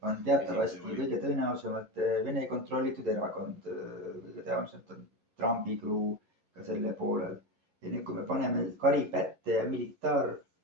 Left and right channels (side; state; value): left; late; 11 ms